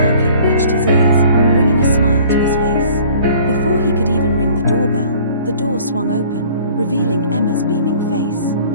reached his ears, bringing a smile to his face. Before he could even ring the doorbell, the door swung open, revealing Emma's beaming face.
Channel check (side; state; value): both; inverted; correlation -0.50